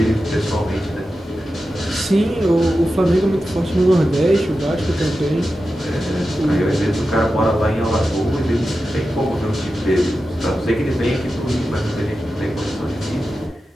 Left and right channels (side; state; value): both; normal; correlation 0.92